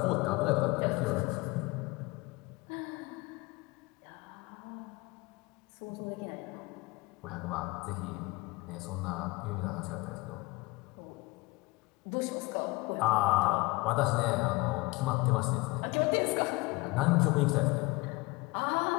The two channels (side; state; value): right; quieter; 23.3 dB